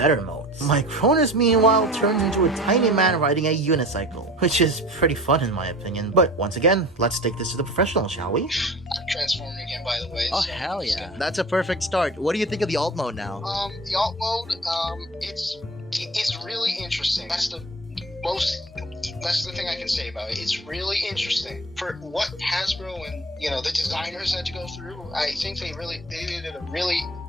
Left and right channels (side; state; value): both; normal; correlation 0.39